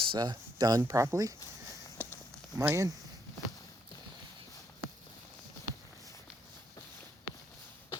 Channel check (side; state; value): both; normal; correlation 0.73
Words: done properly on my end.